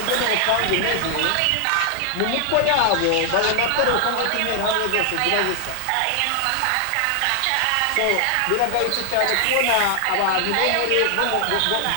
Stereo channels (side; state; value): both; different; correlation 0.00